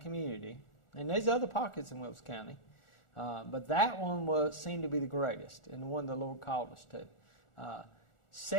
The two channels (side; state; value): right; late; 1.4 ms